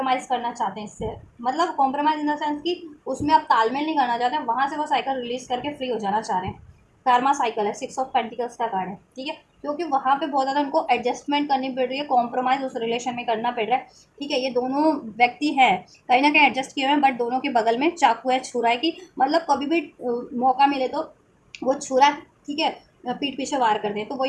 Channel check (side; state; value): both; identical; correlation 1.00